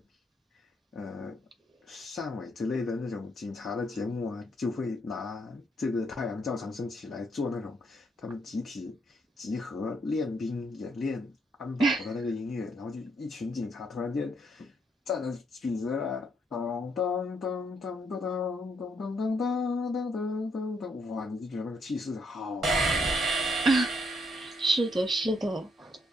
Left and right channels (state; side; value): normal; both; correlation 0.73